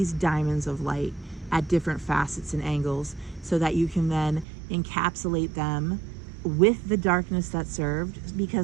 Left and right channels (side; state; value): left; drops out; at 4.5 s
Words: diamonds of light at different facets and angles, so that you can then encapsulate them with the darkness that served,